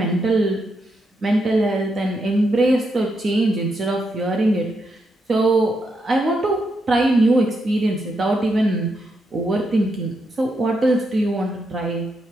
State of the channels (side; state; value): both; normal; correlation 0.81